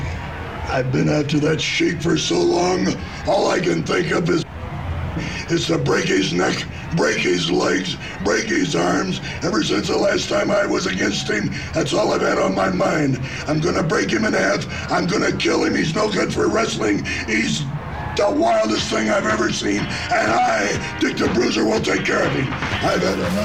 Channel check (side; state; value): both; identical; correlation 1.00